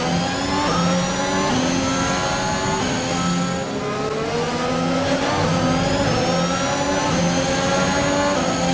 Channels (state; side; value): identical; both; correlation 1.00